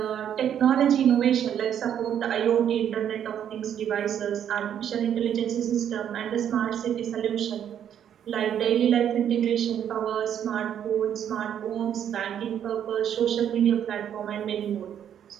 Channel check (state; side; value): quieter; left; 9.4 dB